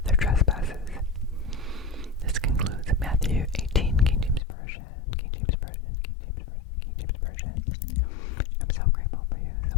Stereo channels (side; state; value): right; drops out; at 4.4 s